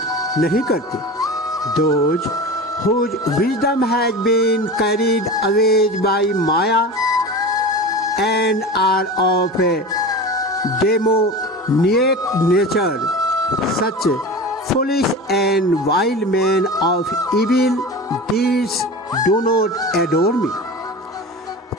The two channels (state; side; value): normal; both; correlation 0.31